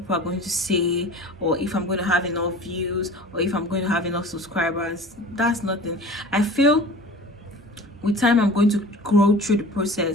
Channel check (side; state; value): both; normal; correlation 0.41